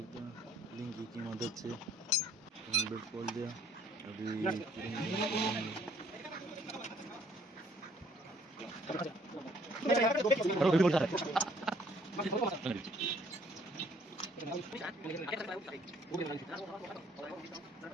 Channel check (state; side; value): normal; both; correlation 0.61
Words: हैं लिंकी की मदद से टाइमिंग बेल्ट खोल दिया। अभी फिर इंजन खोलेंगे।